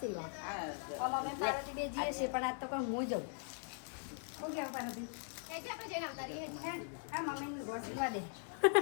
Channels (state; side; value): silent; right; 51 dB below the other